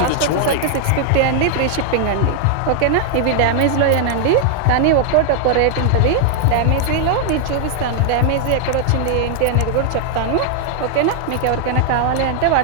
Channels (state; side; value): different; both; correlation 0.00